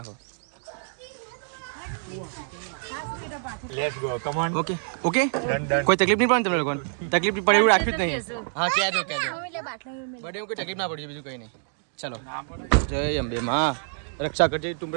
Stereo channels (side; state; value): left; silent; digital silence